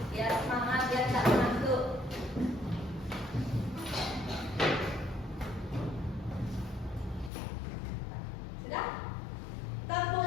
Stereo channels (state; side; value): drops out; right; at 7.3 s